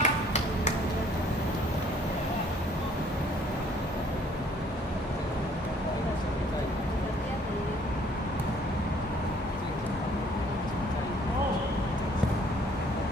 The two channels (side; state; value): both; normal; correlation 0.60